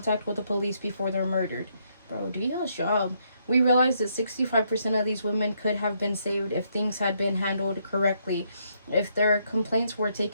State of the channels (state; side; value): inverted; both; correlation -0.74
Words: with the police before they're murdered. Bro, do your job. We realize that 65% of these women could have been saved if things had been handled correctly, if their complaints were